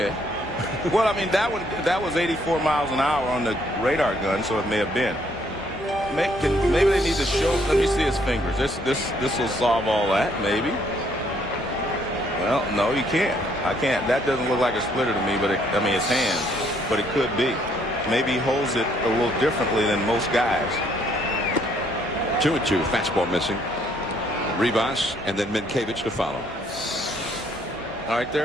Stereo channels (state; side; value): normal; both; correlation 0.67